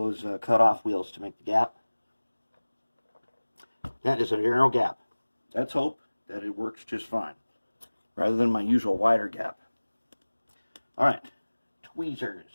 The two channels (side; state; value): both; inverted; correlation -1.00